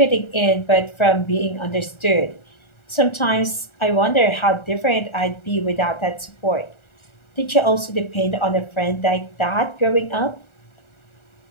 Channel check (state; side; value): late; right; 1.4 ms